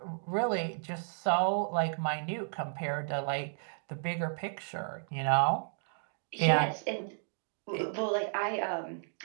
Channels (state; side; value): silent; left; digital silence